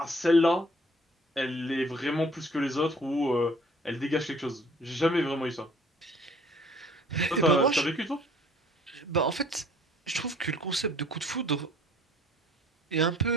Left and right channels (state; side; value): normal; both; correlation 0.55